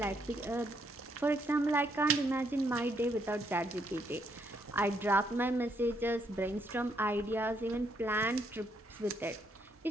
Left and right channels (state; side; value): normal; both; correlation 0.74